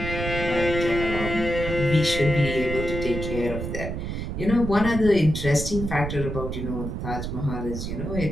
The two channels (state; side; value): noise; right; rumble, 5 dB below the sound